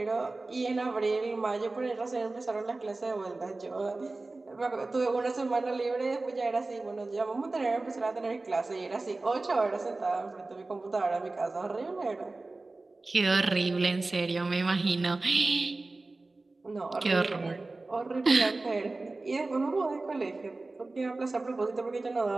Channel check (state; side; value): quieter; left; 3.3 dB